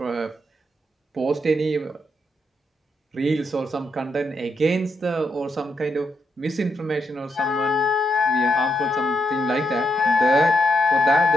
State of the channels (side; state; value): both; normal; correlation 0.80